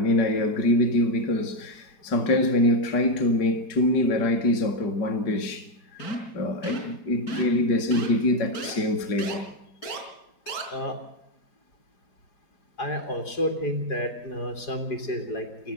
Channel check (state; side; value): late; right; 4.8 ms